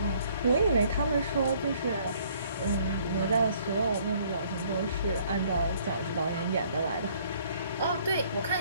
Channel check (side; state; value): both; inverted; correlation -0.61